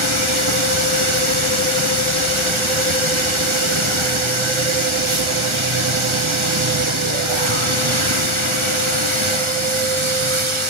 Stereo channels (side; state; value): left; late; 1.4 ms